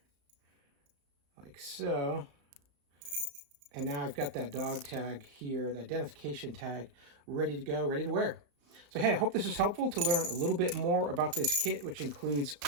like so. And now I've got that dog tag here, the identification tag, ready to go, ready to wear. So hey, I hope this is helpful to learn a little bit more about this kit, which includes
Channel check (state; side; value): late; left; 35 ms